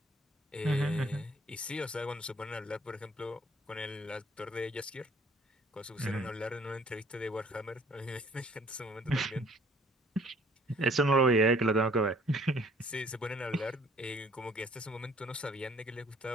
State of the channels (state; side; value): normal; both; correlation 0.58